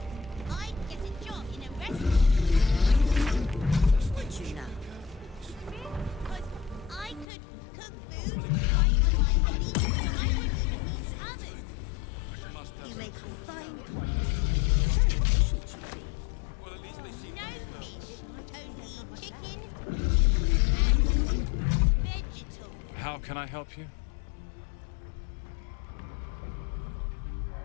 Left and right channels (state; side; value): drops out; right; at 7.2 s